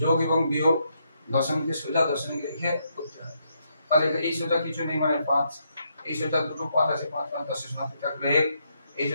এবং বিয়োগ দশমিকের সোজা দশমিক রেখে করতে হয়। তাহলে এই সোজা কিছু নেই মানে 5, এই সোজা দুটো 5 আছে, 5 5 10 শূন্য থাকলে 1, এই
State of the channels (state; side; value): inverted; both; correlation -0.77